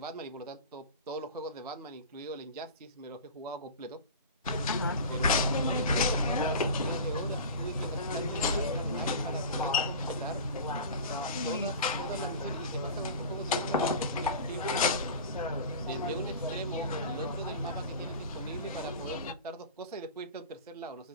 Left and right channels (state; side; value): inverted; both; correlation -0.32